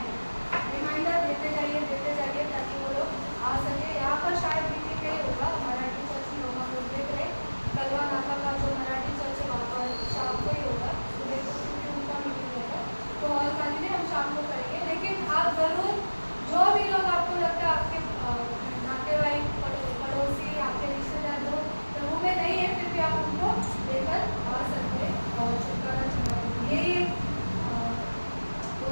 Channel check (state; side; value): inverted; both; correlation -1.00